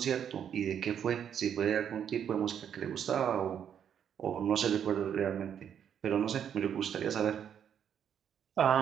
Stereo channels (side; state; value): left; quieter; 8.7 dB